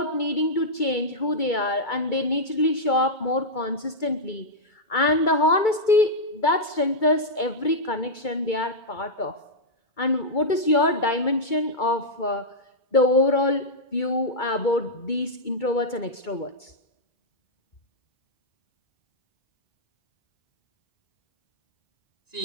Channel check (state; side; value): late; right; 2.2 ms